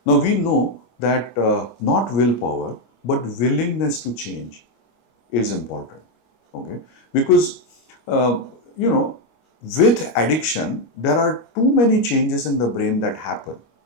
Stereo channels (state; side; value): late; right; 25 ms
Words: Now we know that not willpower, but willingness to change is important. Okay. Because, uh, you know, with addiction, there are too many changes in the brain that happen.